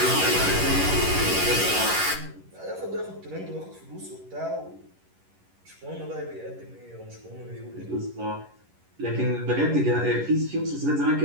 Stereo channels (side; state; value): left; late; 11 ms